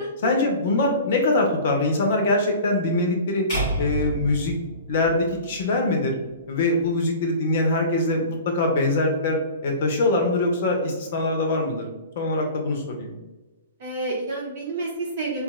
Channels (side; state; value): both; inverted; correlation -0.39